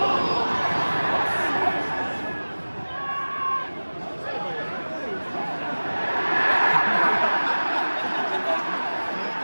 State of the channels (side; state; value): both; inverted; correlation -1.00